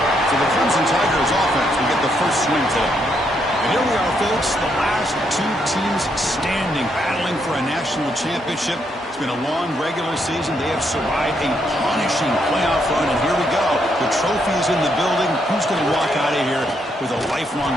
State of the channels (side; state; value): both; normal; correlation 0.76